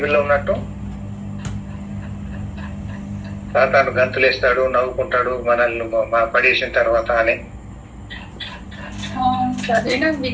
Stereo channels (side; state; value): both; identical; correlation 1.00